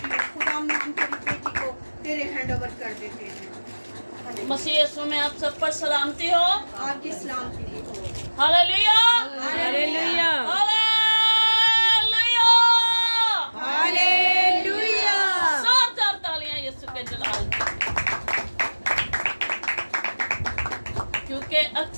खुदा हम तेरी बेटी को तेरे हैंड ओवर कर देते हैं। मसीह यीशु में आप सब पर सलामती हो। आपकी सलामती हो। Hallelujah hallelujah hallelujah hallelujah. जोरदार तालियां यीशु के जलाल के लिए। क्योंकि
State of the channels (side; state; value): both; inverted; correlation -1.00